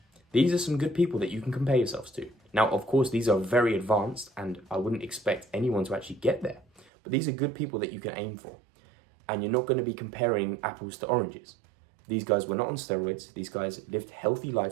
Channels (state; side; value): drops out; left; at 6.9 s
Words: These are some good people that you can compare yourselves to. Now, of course, these are very advanced, and I wouldn't expect anyone to actually get there. But these are good people that you can aim for. And you're not going to be comparing apples to oranges. These guys were not on steroids. These guys lived healthy